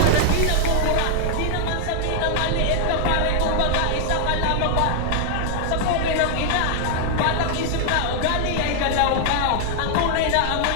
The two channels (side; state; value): both; different; correlation 0.00